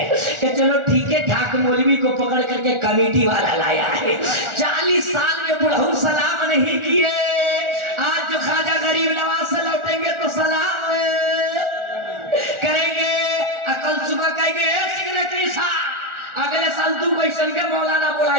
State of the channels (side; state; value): left; late; 1.4 ms